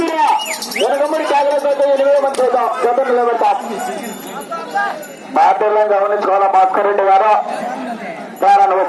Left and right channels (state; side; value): identical; both; correlation 1.00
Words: ఎనకమ్మడి కాగలతో 8 మంది చూద్దాం గతం నిలబెడతాం. బాధ్యతలను గమనించుకోవాలా భాస్కర్ రెడ్డి గారు ప్రారంభం